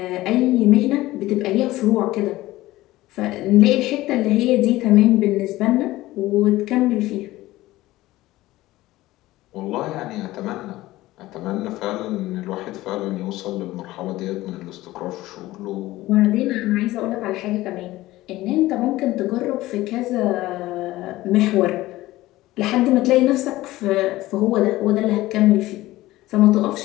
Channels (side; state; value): right; quieter; 17.3 dB